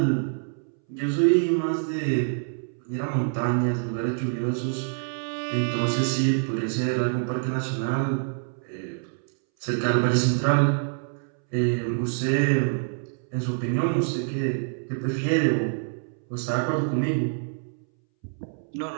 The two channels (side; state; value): left; silent; 61 dB below the other